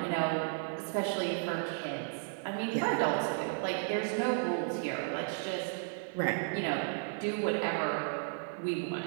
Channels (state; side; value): silent; left; digital silence